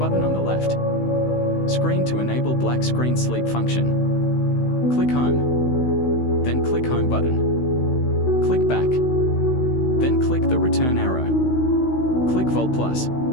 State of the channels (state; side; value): late; right; 16 ms